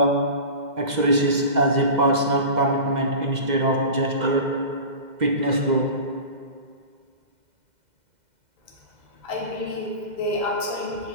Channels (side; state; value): left; late; 2.0 ms